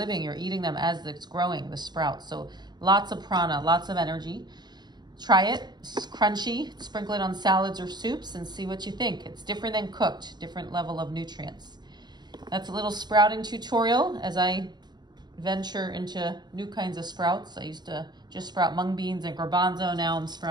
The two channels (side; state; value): left; late; 0.21 ms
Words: You're eating them as it's growing, the sprouts. So lots of prana, lots of energy. Try it, it's crunchy, sprinkle it on salads or soups and see what you think. It's different than cooked, different level of nutrients. That's a little sprouting tutorial as I venture into new kinds of sprouts. I used to just sprout mung beans and garbanzo. Now I'm